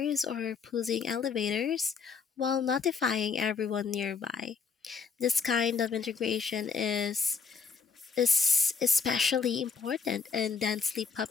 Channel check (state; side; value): quieter; right; 5.5 dB